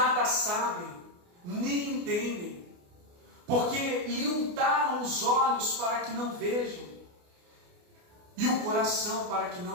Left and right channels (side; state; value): left; late; 29 ms